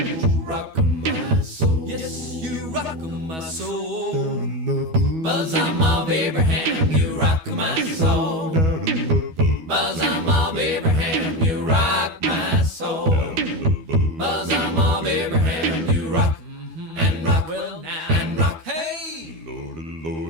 rock my soul. Yes, you rock my soul. Bosom of Abraham, you rock my soul. Bosom of Abraham, you rock my soul. Bosom of Abraham, you rock and rock and rock. Hey,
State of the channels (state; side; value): late; left; 12 ms